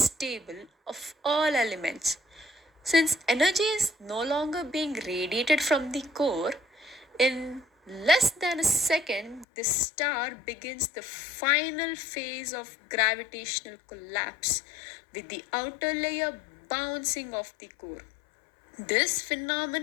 of all elements. Since energy is no longer being radiated from the core, in Less than a second, the star begins the final phase of gravitational collapse, with the outer layer bouncing off the core. This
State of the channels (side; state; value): right; drops out; at 9.5 s